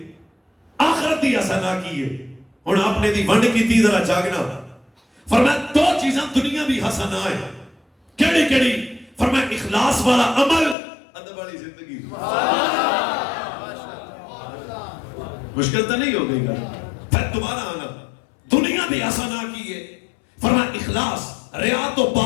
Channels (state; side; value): drops out; right; at 10.8 s